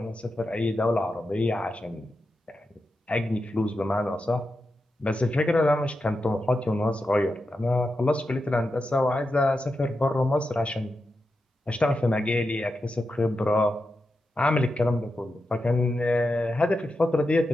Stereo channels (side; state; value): both; normal; correlation 0.89